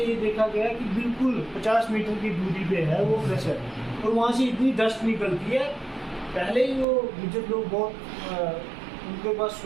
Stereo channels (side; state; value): left; drops out; at 6.9 s